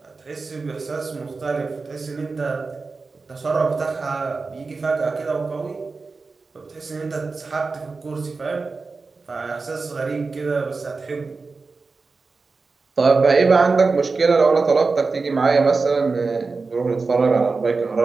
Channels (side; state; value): left; quieter; 4.2 dB